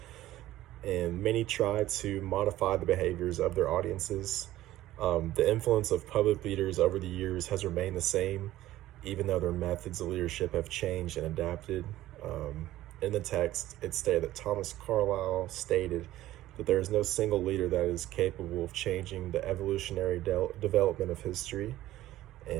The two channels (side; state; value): left; quieter; 14.9 dB